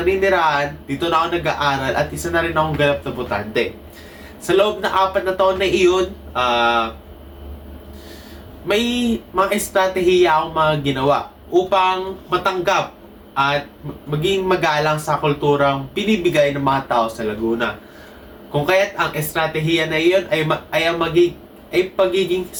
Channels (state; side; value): identical; both; correlation 1.00